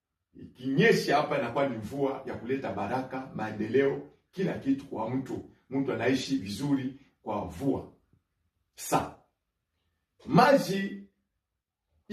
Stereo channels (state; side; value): identical; both; correlation 1.00